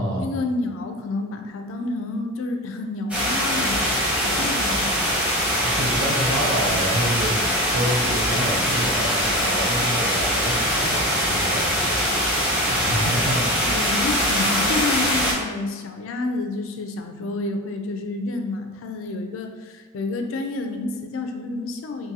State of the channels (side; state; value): both; normal; correlation 0.25